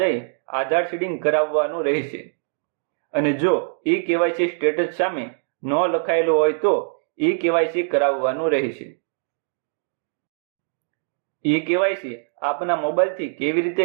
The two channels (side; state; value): left; silent; digital silence